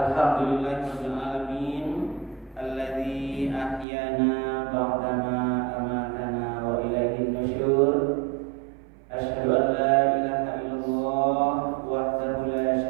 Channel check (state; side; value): drops out; left; at 3.9 s